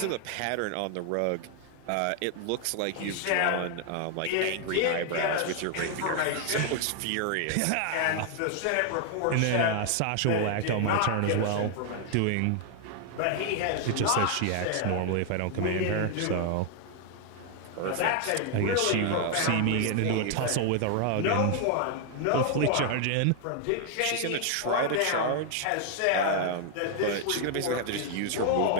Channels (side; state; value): both; different; correlation 0.00